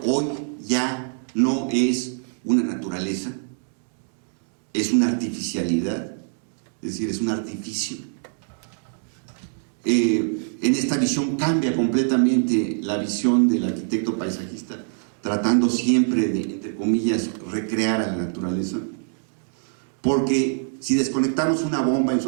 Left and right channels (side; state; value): left; silent; 63 dB below the other